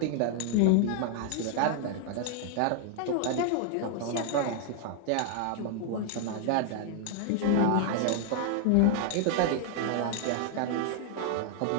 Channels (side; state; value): both; different; correlation 0.00